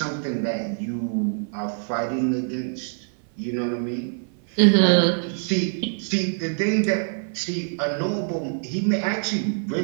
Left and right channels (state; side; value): silent; left; 56 dB below the other